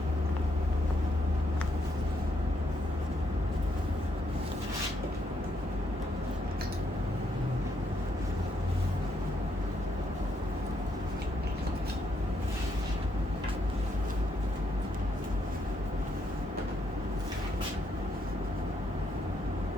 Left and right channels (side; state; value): both; normal; correlation 0.76